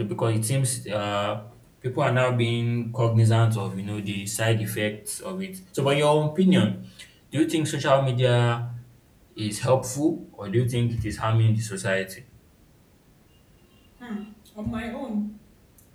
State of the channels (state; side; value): identical; both; correlation 1.00